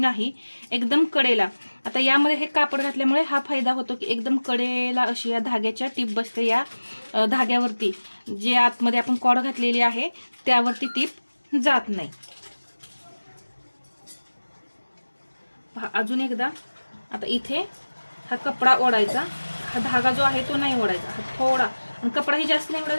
एकदम कडेला. आता यामध्ये हे कापड घातल्यामुळे हा फायदा होतो की एकदम कडेला अशी या धाग्याच्या टीप बसते. या धाग्यावरती जे आतमध्ये आपण कॉड घातलेली आहे त्यावरती टीप जात नाही. पहा अजून एकदा. आता इथे हा कपडा ओढायचा, हा धागा जो आहे तो नाही ओढायचा, हा थोडा, आणि कपडाही जास्त नाही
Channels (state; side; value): inverted; both; correlation -1.00